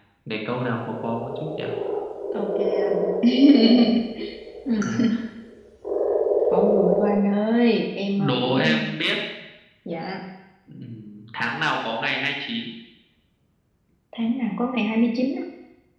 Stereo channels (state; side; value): identical; both; correlation 1.00